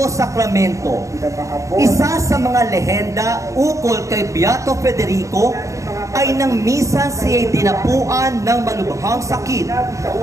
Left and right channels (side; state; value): left; late; 0.15 ms